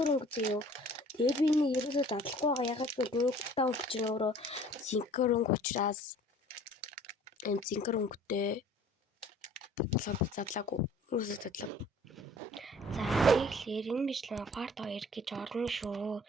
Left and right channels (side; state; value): both; normal; correlation 0.51